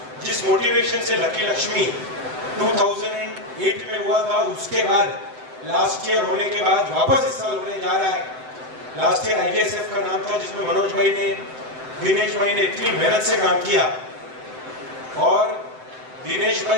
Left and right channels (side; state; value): left; late; 7.8 ms